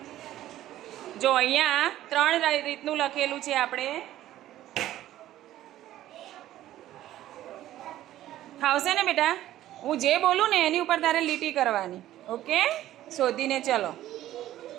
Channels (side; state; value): left; quieter; 13.7 dB